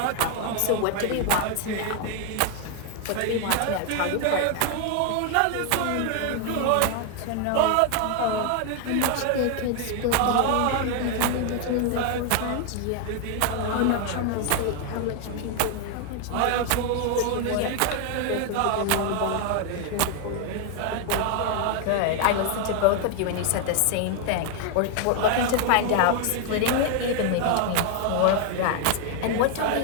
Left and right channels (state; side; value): different; both; correlation 0.00